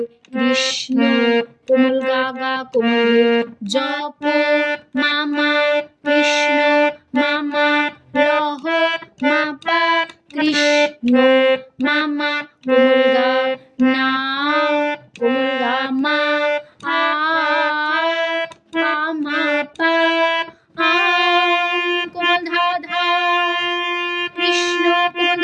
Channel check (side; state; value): both; identical; correlation 1.00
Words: কৃষ্ণ কোমল গা গা কোমল জপ মামা কৃষ্ণ মামা লহ মাপা কৃষ্ণ মামা কোমল গা না কোমল গা মা আ মা পা আ কোমল ধা ধা কৃষ্ণ কোমল